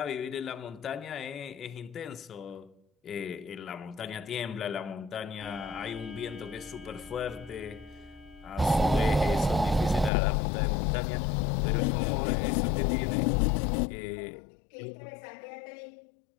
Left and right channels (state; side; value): drops out; right; at 10.1 s